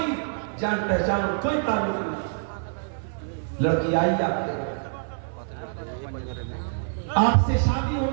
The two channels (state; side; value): silent; left; 61 dB below the other